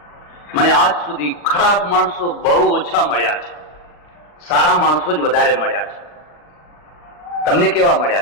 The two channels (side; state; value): right; late; 40 ms